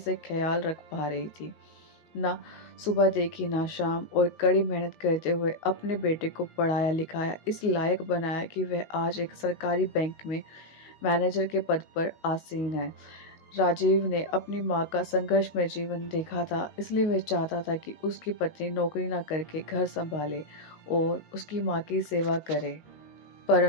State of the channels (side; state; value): right; late; 19 ms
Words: ख्याल रख पा रही थी। ना सुबह देखी ना शाम, और कड़ी मेहनत करते हुए अपने बेटे को पढ़ाया लिखाया, इस लायक बनाया कि वह आज एक सरकारी बैंक में मैनेजर के पद पर आसीन है। राजीव ने अपनी माँ का संघर्षमय जीवन देखा था, इसलिए वह चाहता था कि उसकी पत्नी नौकरी न करके घर संभाले और उसकी माँ की सेवा करे।